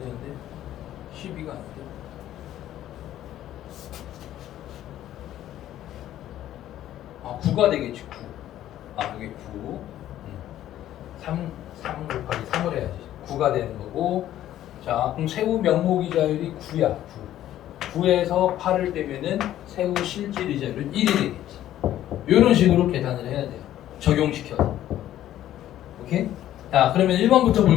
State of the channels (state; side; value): quieter; right; 12.6 dB